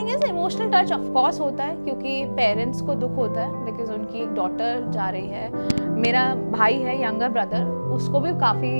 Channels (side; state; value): both; inverted; correlation -1.00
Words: is emotional touch of course होता है, क्योंकि पेरेंट्स को दुख होता है बिकॉज उनकी एक डॉटर जा रही है। मेरा भाई है यंगर ब्रदर, उसको भी